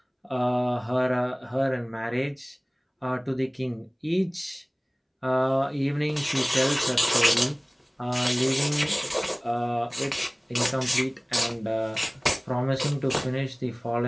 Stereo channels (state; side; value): identical; both; correlation 1.00